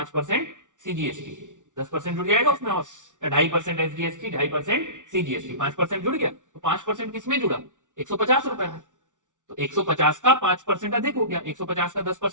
CGST, 10% जुड़ जाएगा उसमें, और 2.5% SGST, 2.5% CGST, 5% जुड़ गया, तो 5% किसमें जुड़ा? 150 रुपए में। तो 150 का 5% अधिक हो गया, 150 का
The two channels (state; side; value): late; left; 0.87 ms